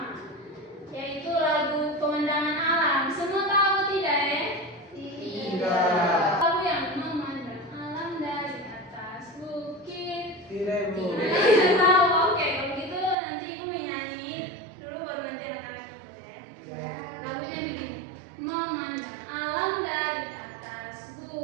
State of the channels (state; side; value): drops out; left; at 13.2 s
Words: yaitu lagu Pemandangan Alam. Semua tahu tidak ya? Tidak. Lagu yang memandang alam dari atas bukit. Tidak Bu. Tidak tahu. Oke, kalau gitu nanti Ibu menyanyi dulu baru nanti anak-anak ikut ya. Lagunya begini. Memandang alam dari atas